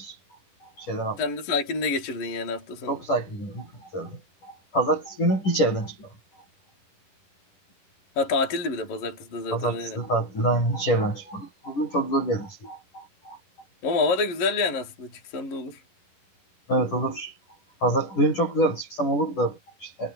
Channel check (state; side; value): late; right; 10 ms